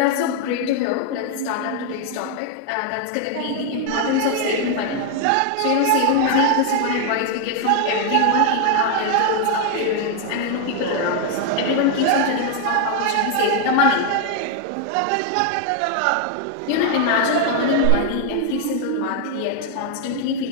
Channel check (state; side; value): different; both; correlation 0.00